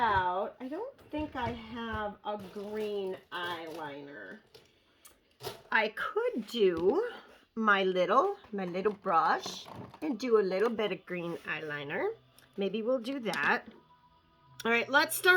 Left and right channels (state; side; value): identical; both; correlation 1.00